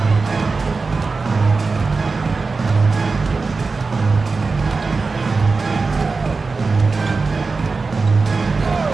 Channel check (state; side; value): quieter; left; 4.2 dB